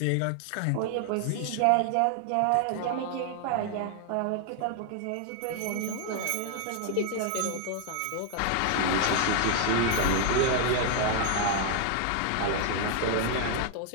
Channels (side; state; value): both; different; correlation 0.00